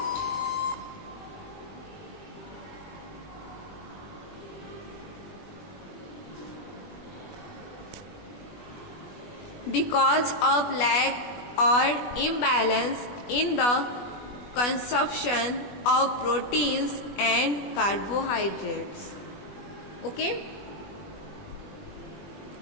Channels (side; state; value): right; late; 21 ms